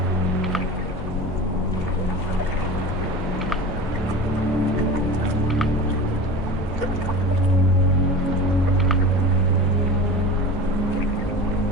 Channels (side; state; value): both; normal; correlation 0.33